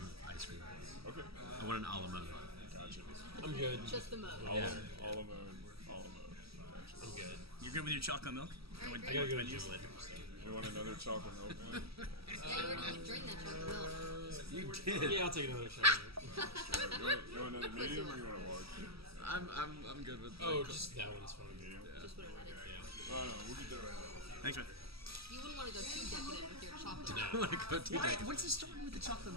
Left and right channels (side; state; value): left; late; 0.76 ms